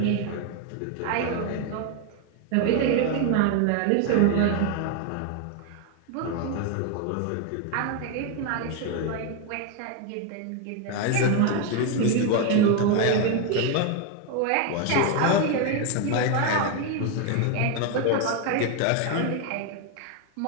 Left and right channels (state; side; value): different; both; correlation 0.01